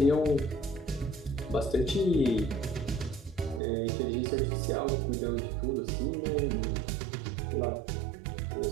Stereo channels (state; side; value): drops out; left; at 3.6 s